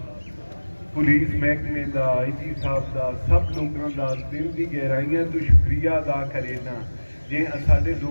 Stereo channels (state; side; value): inverted; both; correlation -1.00